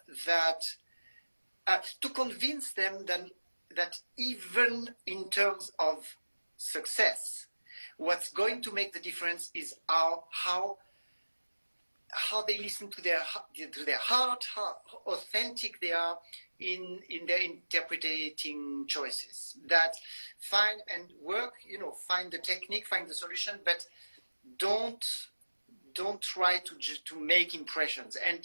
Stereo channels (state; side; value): inverted; both; correlation -1.00